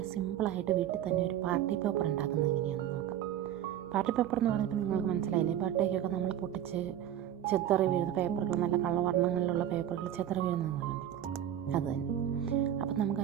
സിമ്പിളായിട്ട് വീട്ടിൽ തന്നെ ഒരു പാർട്ടി പേപ്പർ ഉണ്ടാക്കുന്നത് എങ്ങനെയാണെന്ന് നോക്കാം. പാർട്ടി പേപ്പർ എന്ന് പറഞ്ഞപ്പോൾ നിങ്ങൾക്ക് മനസ്സിലായില്ലേ, ബർത്ത്ഡേക്കൊക്കെ നമ്മൾ പൊട്ടിച്ച് ചെത്തറി വീഴുന്ന പേപ്പറുകൾ, നല്ല കളവർണ്ണങ്ങളിലുള്ള പേപ്പറുകൾ ചെത്തറി വീഴുന്നത് കണ്ടില്ലേ, അത് തന്നെ. അപ്പം നമുക്ക്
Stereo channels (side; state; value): left; quieter; 11.0 dB